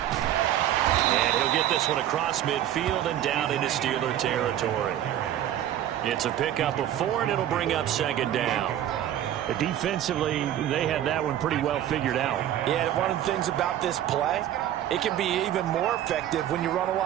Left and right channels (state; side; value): quieter; left; 11.6 dB